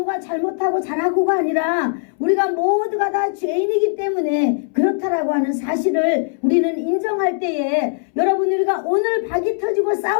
잘못하고 잘하고가 아니라 우리가 모두가 다 죄인이기 때문에 그렇다라고 하는 사실을 우리는 인정할 때에, 여러분, 우리가 오늘 박이 터지고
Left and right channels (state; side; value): silent; right; 65 dB below the other